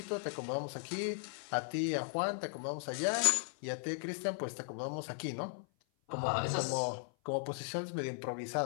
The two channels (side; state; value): right; silent; 53 dB below the other